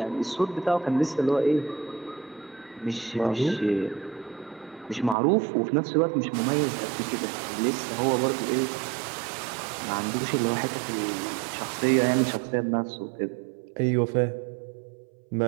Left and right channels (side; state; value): left; drops out; at 5.2 s